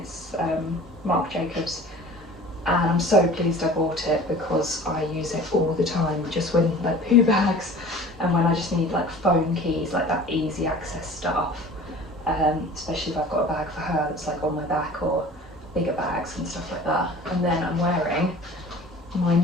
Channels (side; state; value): both; normal; correlation 0.43